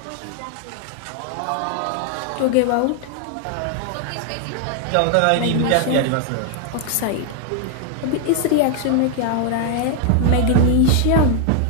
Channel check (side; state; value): both; different; correlation 0.00